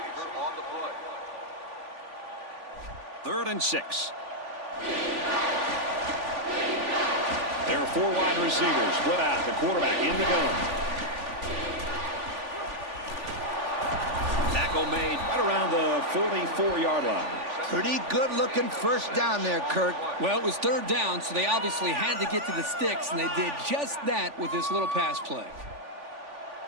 on the play. 3rd and 6. There are 4 wide receivers split out. The quarterback in the gun. Tackle made right around the 44-yard line. Pretty good-looking first down there, Kirk. Well, it was 3rd down, so they obviously had to get to the sticks, and they did just that with this little pass play.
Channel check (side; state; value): left; late; 3.5 ms